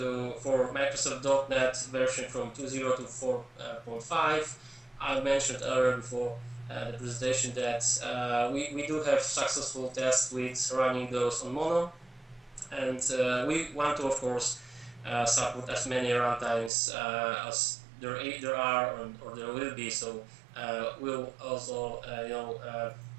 for Microsoft .NET version from 2.0 to 4.5. I mentioned earlier before the presentation that we do have successful tests with running those on Mono, and we want to, of course, support as many runtimes as there are or there will be. So we'll also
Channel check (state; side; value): drops out; left; at 16.7 s